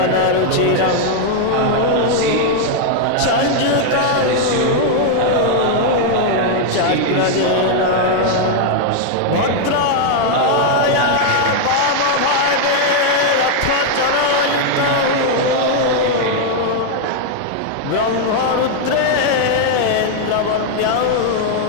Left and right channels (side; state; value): both; different; correlation 0.00